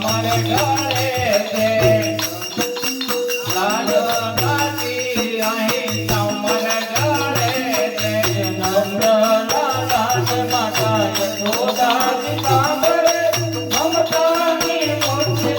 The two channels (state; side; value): identical; both; correlation 1.00